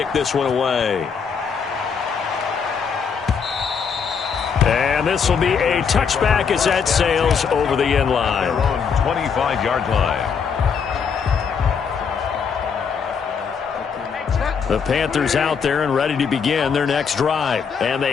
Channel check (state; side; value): quieter; right; 6.3 dB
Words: this one away. And this will be a touchback as that sails over the end line. 25-yard line. The Panthers out there and ready to begin their next drive. And